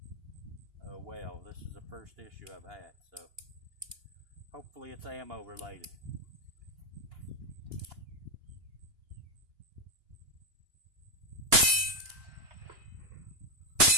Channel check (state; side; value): late; left; 2.9 ms